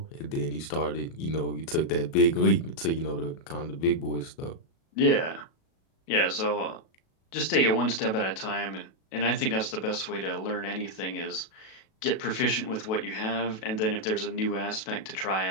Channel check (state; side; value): late; right; 37 ms